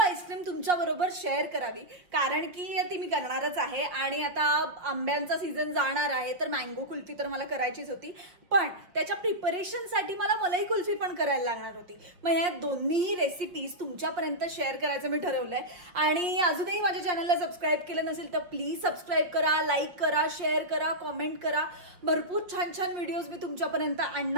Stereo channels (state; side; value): late; left; 5.6 ms